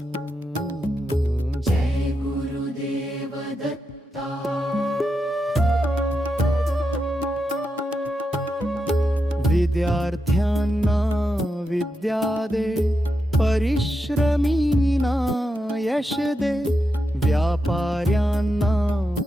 जय गुरुदेव दत्ता विद्यार्थ्यांना विद्या दे परिश्रमींना यश दे व्यापाऱ्यांना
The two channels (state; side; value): normal; both; correlation 0.86